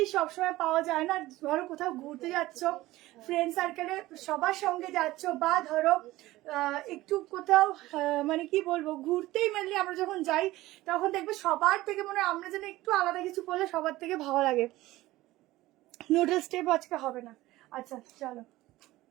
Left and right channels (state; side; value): quieter; left; 17.5 dB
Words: সবসময় পাওয়া যায় না। ধরো কোথাও ঘুরতে যাচ্ছ, ফ্রেন্ড সার্কেলে সবার সঙ্গে যাচ্ছ, বা ধরো একটু কোথাও মানে কি বলবো, ঘুরতেই মেনলি আমরা যখন যাই, তখন দেখবে সবার থেকে মনে হয় আমরা যেন একটু আলাদা কিছু করলে সবার থেকে ভালো লাগে। নুডল স্টেপ আজকে হবে না। আচ্ছা চলো,